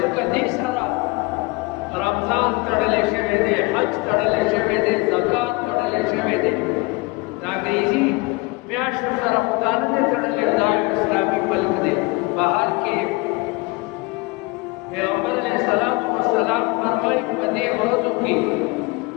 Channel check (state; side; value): quieter; right; 25.5 dB